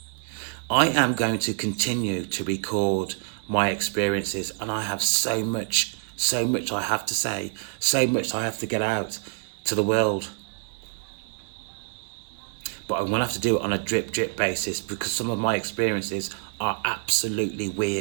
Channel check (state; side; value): silent; left; 61 dB below the other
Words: I am going to continue to record my experiences, and I have so much I have to say, so much I have to get out to the world. But I'm going to have to do it on a drip basis because some of my experiences are absolutely